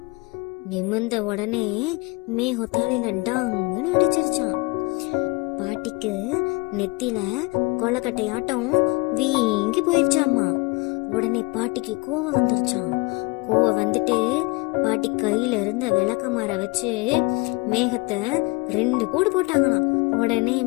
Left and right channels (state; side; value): quieter; right; 26.7 dB